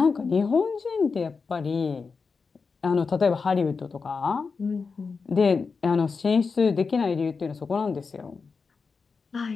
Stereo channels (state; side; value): quieter; right; 4.9 dB